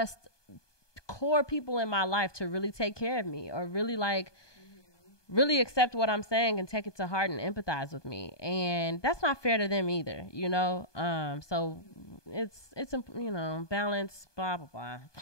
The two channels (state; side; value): late; right; 1.2 ms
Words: core people in my life to really take care of me or really like really accept what I'm saying and take it to heart and empathize with me. And that's not fair to them either, you know? So it's, you know, balance, blah, blah, blah.